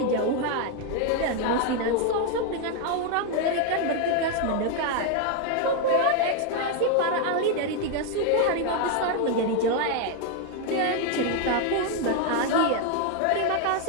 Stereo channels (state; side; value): different; both; correlation 0.01